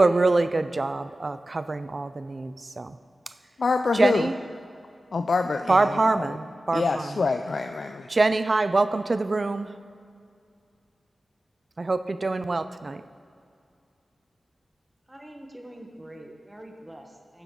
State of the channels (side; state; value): both; normal; correlation 0.94